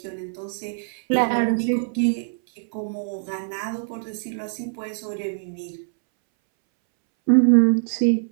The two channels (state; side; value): silent; left; 63 dB below the other